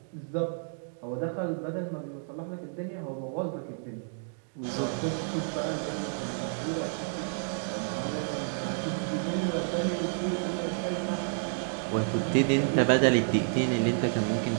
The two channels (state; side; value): silent; left; digital silence